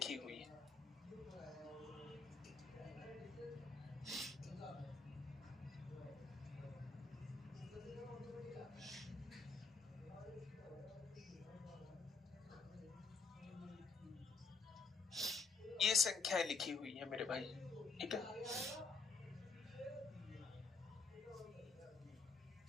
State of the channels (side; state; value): right; quieter; 4.2 dB